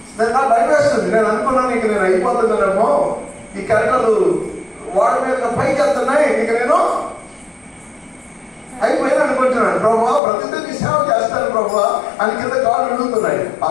నాకు భయం వేస్తుంది. నేను అనుకున్నాను ఇక నేను అయిపోతున్నానేమో, ఈ కరెంట్లు వాడి మీద పైకి వెళ్తున్నాయి, ఇక నేను అయిపోయినా అనుకుంటున్నాను. ప్రభువా ప్రతిదిన నీ సేవ చేస్తాను ప్రభువా అని కింద కాళ్ళు అడుగుతున్నాయి. ఆ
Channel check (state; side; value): drops out; right; at 10.2 s